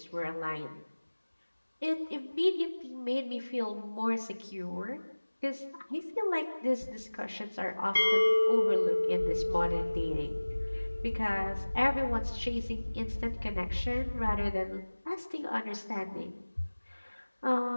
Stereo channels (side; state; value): both; inverted; correlation -1.00